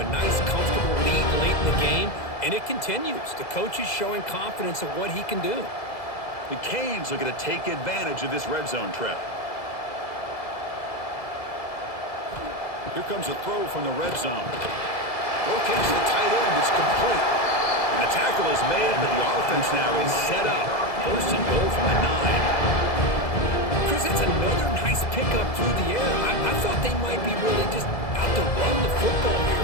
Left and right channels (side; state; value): right; late; 2.0 ms